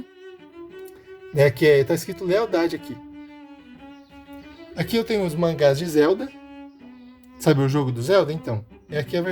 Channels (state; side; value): identical; both; correlation 1.00